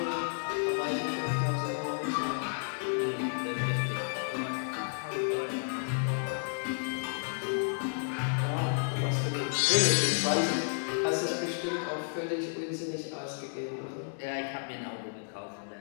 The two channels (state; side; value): silent; right; digital silence